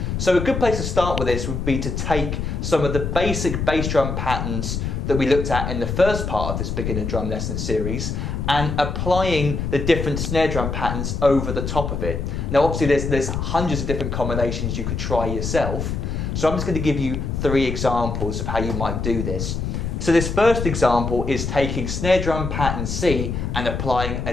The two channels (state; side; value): noise; left; rumble, 3 dB below the sound